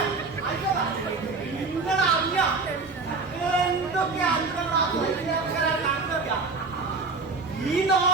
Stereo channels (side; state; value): left; quieter; 4.0 dB